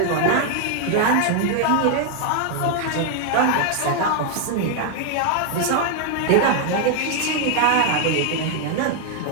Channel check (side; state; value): both; different; correlation 0.00